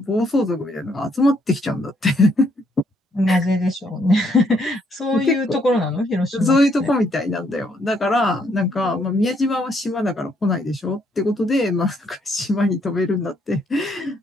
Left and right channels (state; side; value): normal; both; correlation 0.71